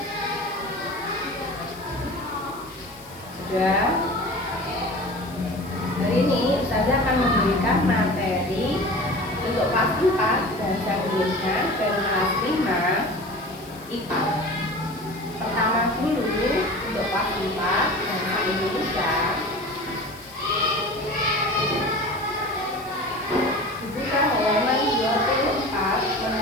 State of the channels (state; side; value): noise; left; hiss, 22 dB below the sound